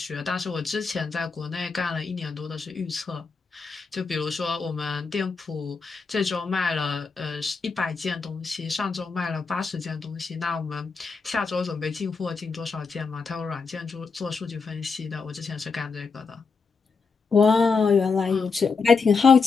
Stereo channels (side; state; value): right; quieter; 4.9 dB